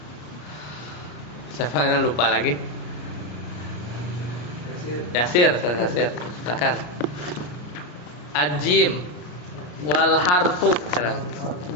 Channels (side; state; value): right; late; 34 ms